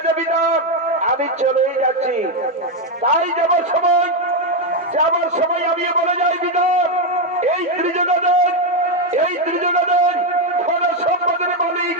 বিধান, আমি চলেই যাচ্ছি। তাই যাবার সময় আমি বলে যাই বিধান, এই ত্রিজগতের ধন সম্পদের মালিক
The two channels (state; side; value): normal; both; correlation 0.05